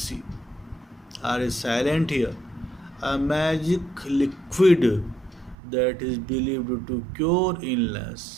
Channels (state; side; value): drops out; left; at 5.6 s